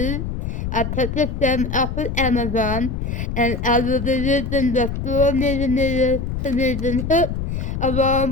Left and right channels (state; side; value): noise; left; rumble, 4 dB below the sound